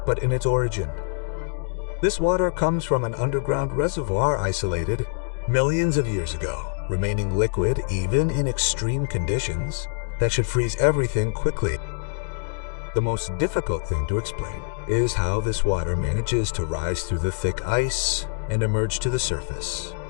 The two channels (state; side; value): silent; right; digital silence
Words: but in its origin. This water comes from an underground reservoir isolated millions of years ago, remaining liquid even in extreme conditions, that should freeze everything quickly. The most difficult thing to explain is how this water manages to rise through the thick ice and emerge to the surface.